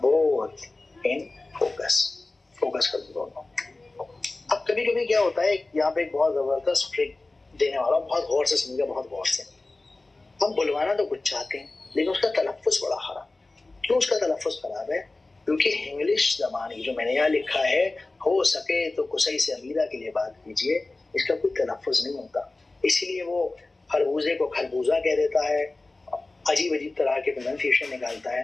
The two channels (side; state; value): right; quieter; 3.2 dB